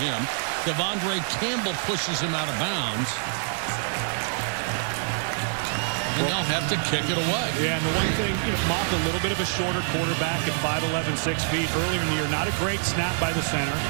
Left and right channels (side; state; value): left; silent; digital silence